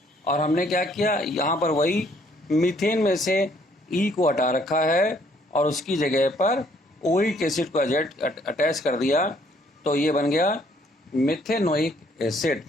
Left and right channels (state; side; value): normal; both; correlation 0.65